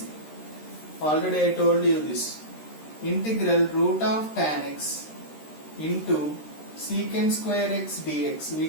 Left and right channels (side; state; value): right; late; 13 ms